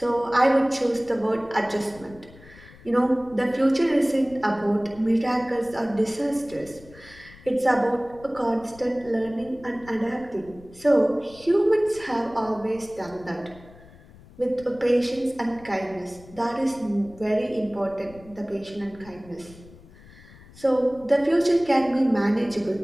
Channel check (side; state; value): left; noise; rumble, 22 dB below the sound